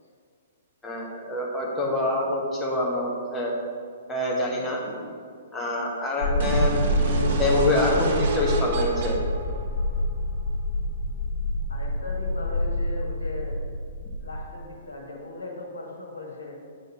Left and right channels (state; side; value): inverted; both; correlation -0.44